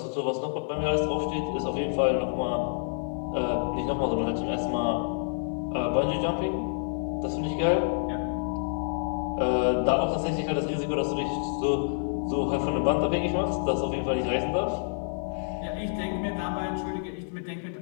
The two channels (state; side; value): silent; right; 59 dB below the other